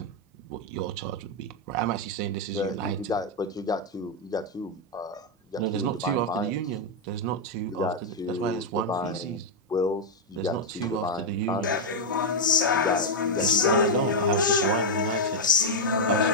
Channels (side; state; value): both; normal; correlation -0.01